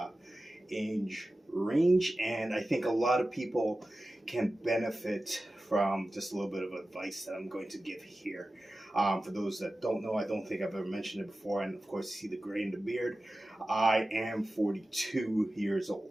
age range, and I think a lot of people can benefit from just a little bit of advice that I'm going to give here. For those that don't know, I don't think I've ever mentioned it before, and of course, see the gray in the beard. I am 42 years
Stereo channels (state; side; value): normal; both; correlation 0.95